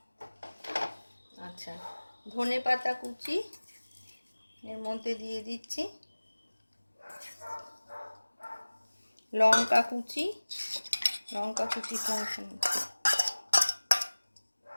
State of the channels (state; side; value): inverted; both; correlation -1.00